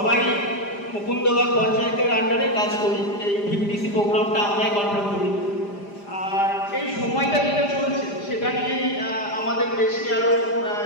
মুকুন্দবাগ পঞ্চায়েতের আন্ডারে কাজ করি। এই ভিপিডিসি প্রোগ্রামটা আমরাই কন্ট্রোল করি। আর এই সময়টা যেটা চলছে সেটা নিয়েই আমাদের বেশি আরও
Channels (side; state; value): right; late; 4.9 ms